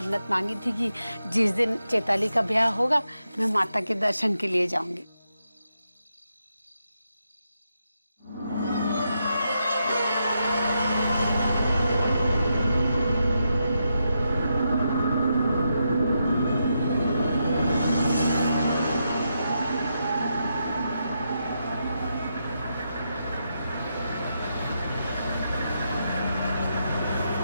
मांगी थी कि जिस दिन चैताली का ब्याह होगा मैं माता के दर्शन के लिए जाऊंगी।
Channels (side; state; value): both; inverted; correlation -0.84